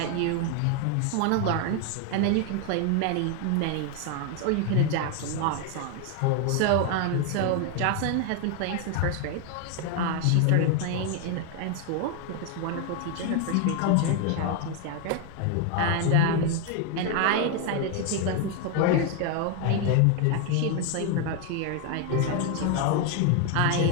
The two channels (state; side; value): different; both; correlation 0.01